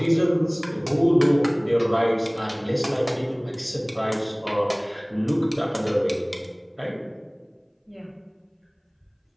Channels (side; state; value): both; identical; correlation 1.00